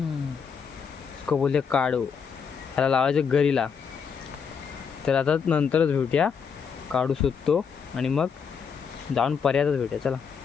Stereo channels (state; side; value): quieter; right; 6.5 dB